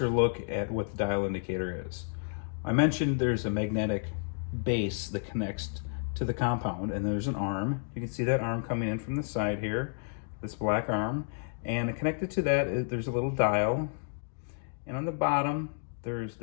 look at what the dial indicator is. I mentioned there's a magnetic base that connects to the compound, and there's an arm. You can see that arm coming in from the side here, this black arm. And connected to that, there's a little dial. And on the bottom, there's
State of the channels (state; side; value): silent; right; digital silence